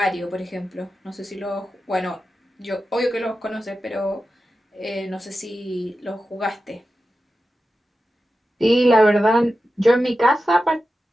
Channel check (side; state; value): both; normal; correlation 0.92